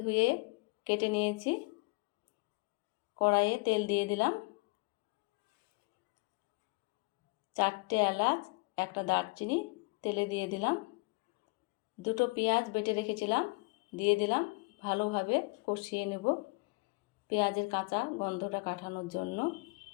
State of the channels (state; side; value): quieter; right; 28.2 dB